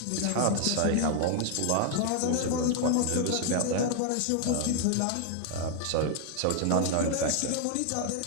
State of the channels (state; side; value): different; both; correlation 0.00